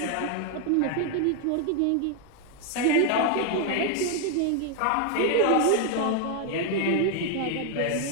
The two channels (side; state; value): both; different; correlation 0.00